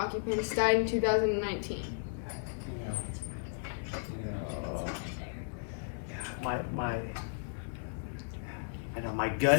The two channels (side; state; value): right; silent; digital silence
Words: died in 2019? My